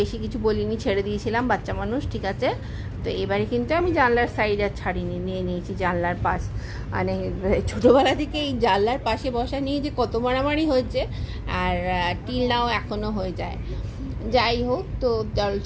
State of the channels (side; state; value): both; identical; correlation 1.00